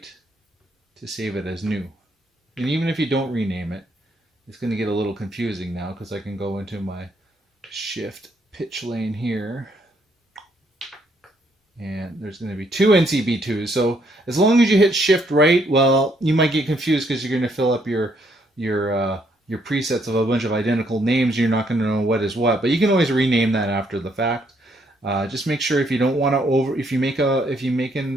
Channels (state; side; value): normal; both; correlation 0.71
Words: to save it as new. And even if you don't rename it, it's going to get a little confusing now, because I can go into my shift pitch lane here, and there's going to be two NCB2s. So as long as you hit shift right, well, you might get confused because you're going to fill up your presets of a bunch of identical names. You're not going to know what is what, but you can always rename that after the fact. Just make sure if you don't want to if you make